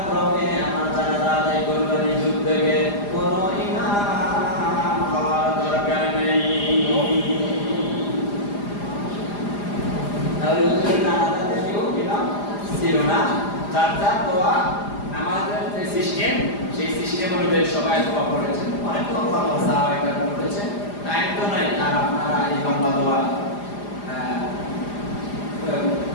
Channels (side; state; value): right; late; 4.9 ms